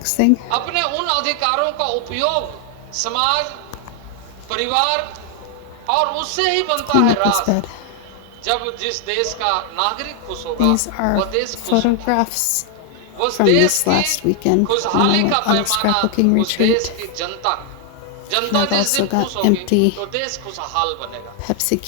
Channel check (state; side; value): different; both; correlation 0.00